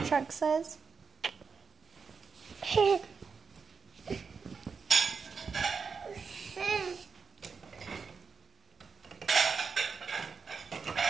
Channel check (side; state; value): left; quieter; 5.5 dB